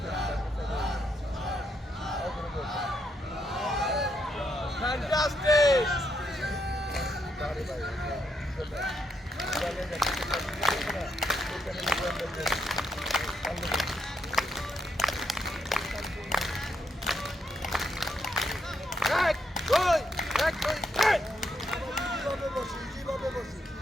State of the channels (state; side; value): normal; both; correlation 0.79